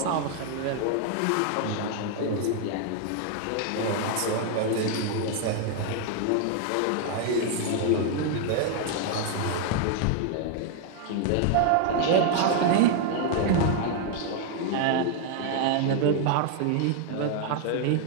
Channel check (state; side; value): different; both; correlation 0.00